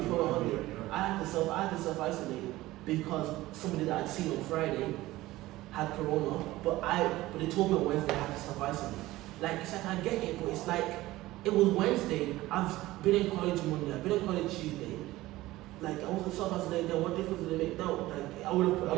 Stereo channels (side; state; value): left; quieter; 17.5 dB